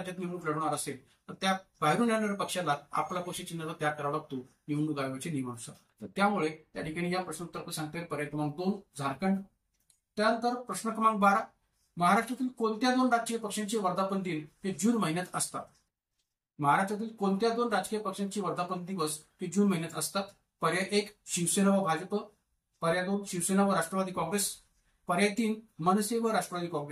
निवडणूक लढवणार असेल तर त्या बाहेरून येणाऱ्या पक्षाला आपला पक्ष चिन्हाचा त्याग करावा लागतो निवडणूक आयोगाच्या नियमानुसार. तर त्यामुळे त्या ठिकाणी या प्रश्नोत्तर सांगता येईल पर्याय क्रमांक 2 झारखंड. त्यानंतर प्रश्न क्रमांक 12 महाराष्ट्रातील कोणत्या 2 राजकीय पक्षांचे वर्धापन दिन हे जून महिन्यात असतात? महाराष्ट्रातील कोणत्या 2 राजकीय पक्षांचे वर्धापन दिवस हे जून महिन्यात असतात? पर्याय 1 शिवसेना व भाजप, पर्याय 2 शिवसेना व राष्ट्रवादी काँग्रेस, पर्याय 3 मनसे व राष्ट्रवादी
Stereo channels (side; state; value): both; identical; correlation 1.00